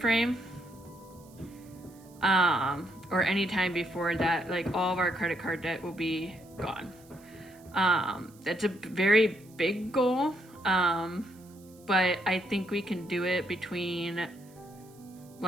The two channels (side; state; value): right; noise; hiss, 27 dB below the sound